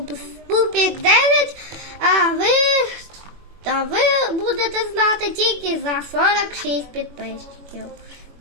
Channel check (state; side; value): late; left; 21 ms